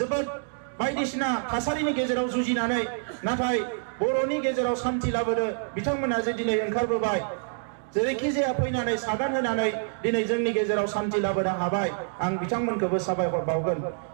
बायदिसिना थासारिनि गेजेराव जुजिनानै नाथाय बर'नि गेजेराव शान्ति लाबोनो बिथांमोना जे दिनै ओंखारबोबाय जेरैखि जाया फैनानै सागान होनानै दिनै जोंनि गेजेराव शान्ति लाबोनो हाबाय आं बिथांमोनखौबो साबायखर बावगोन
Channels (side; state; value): left; silent; digital silence